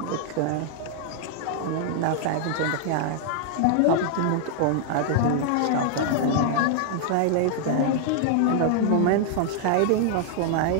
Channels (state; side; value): different; both; correlation -0.01